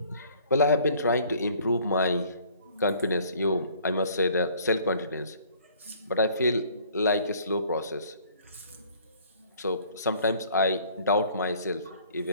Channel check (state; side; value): inverted; both; correlation -0.57